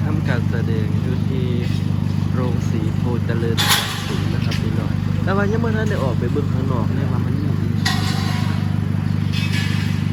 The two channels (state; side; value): identical; both; correlation 1.00